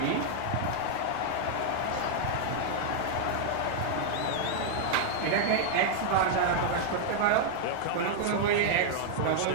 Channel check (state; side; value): different; both; correlation -0.01